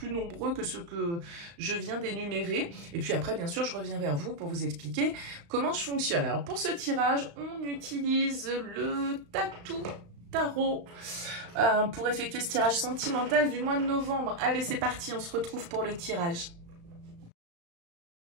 nombreux que ceux que je viens d'énumérer. Et puis après, bien sûr, je reviens vers vous pour vous expliquer comment je fonctionne. Alors, pour ce tirage, on utilise le Tatou Tarot pour effectuer ce tirage sentimental du mois de novembre. Allez, c'est parti, on se retrouve pour le tirage.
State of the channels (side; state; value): left; late; 35 ms